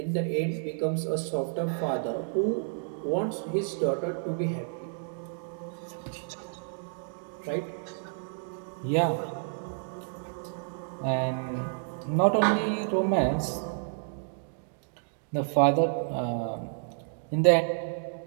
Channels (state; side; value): silent; left; digital silence